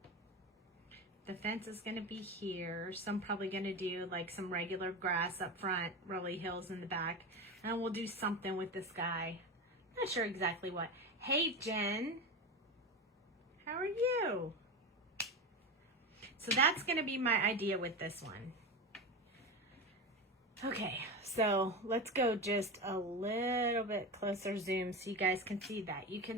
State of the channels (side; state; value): both; normal; correlation 0.22